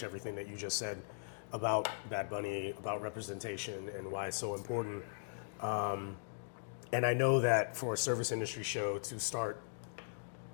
everything that you just said about Bad Bunny, about representation, and why it's so important. And I know that for a service industry show to start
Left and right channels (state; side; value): silent; right; digital silence